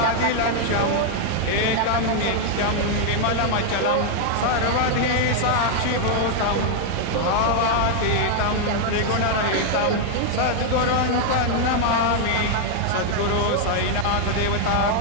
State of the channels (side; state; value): both; different; correlation 0.00